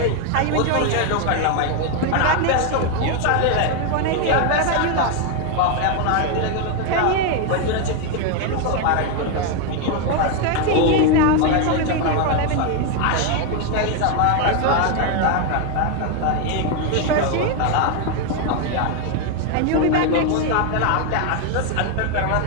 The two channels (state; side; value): different; both; correlation 0.01